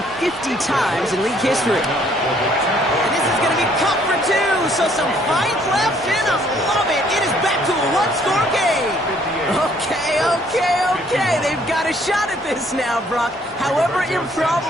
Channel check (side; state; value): both; normal; correlation 0.63